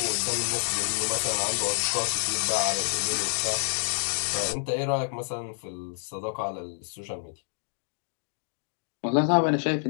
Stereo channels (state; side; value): silent; right; 59 dB below the other